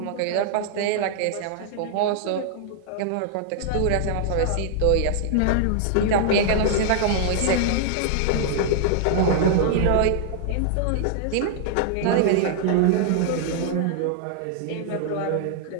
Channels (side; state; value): both; different; correlation -0.01